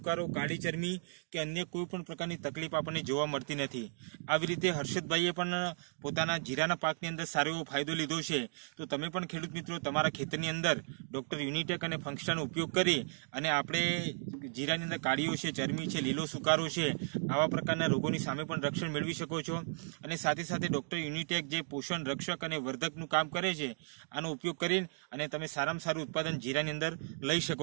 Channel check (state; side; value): silent; left; digital silence